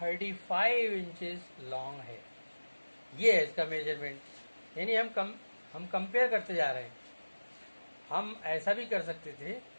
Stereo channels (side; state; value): both; inverted; correlation -1.00